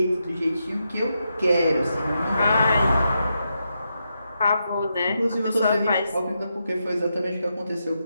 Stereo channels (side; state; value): both; inverted; correlation -0.84